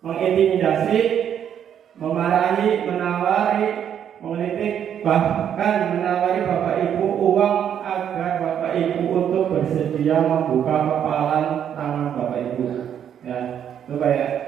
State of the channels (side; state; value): left; quieter; 9.1 dB